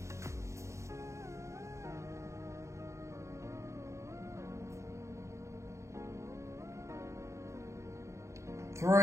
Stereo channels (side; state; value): left; late; 0.14 ms